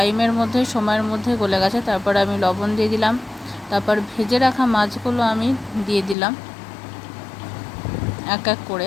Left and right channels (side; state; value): right; drops out; at 6.2 s